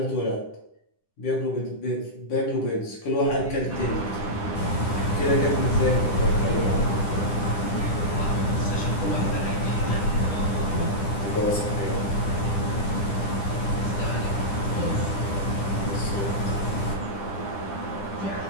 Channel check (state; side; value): late; right; 10 ms